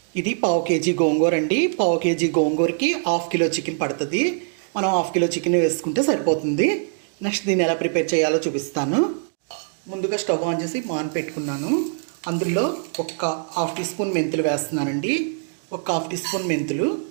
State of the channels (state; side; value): silent; left; digital silence